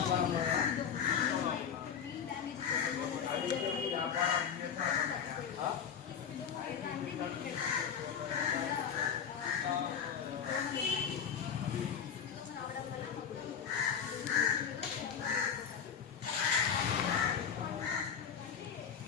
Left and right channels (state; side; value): quieter; right; 7.6 dB